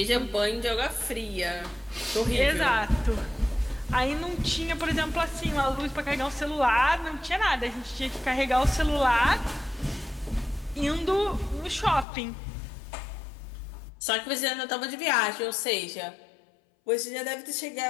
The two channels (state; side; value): drops out; right; at 12.1 s